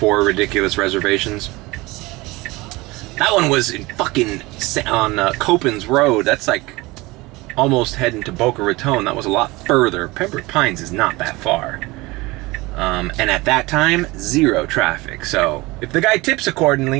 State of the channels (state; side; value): quieter; left; 22.0 dB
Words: ridiculous reservations. That one was in fucking on Copans Road. That's like almost heading to Boca Raton. That was a lot further. Pembroke Pines is not that far. And at that time, 0 traffic. So if the guy tips